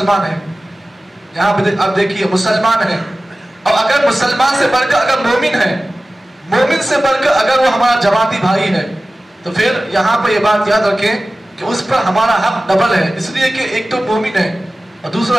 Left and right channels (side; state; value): both; normal; correlation 0.96